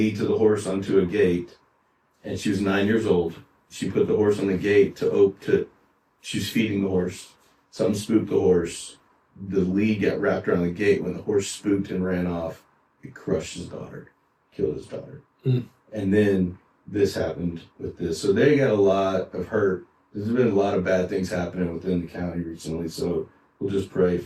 to the horse onto a gate, and she was 9 years old. She put the horse on the gate she was feeding the horse. Something spooked the horse. The lead got wrapped around the gate. When the horse spooked and ran off, it crushed his daughter, killed his daughter. Mm. And then this happened with this. So they got a lot of hurt. There's been a lot of bad things happening within the county recently. So we'll just pray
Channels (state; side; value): identical; both; correlation 1.00